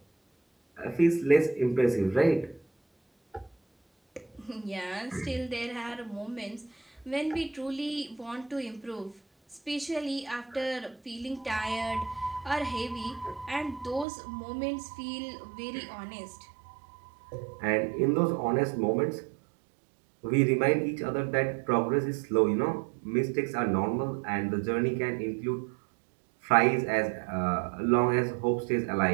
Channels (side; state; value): left; drops out; at 14.1 s